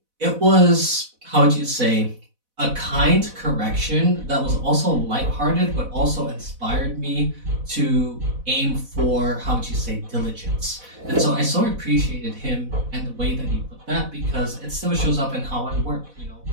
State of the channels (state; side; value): late; left; 4.0 ms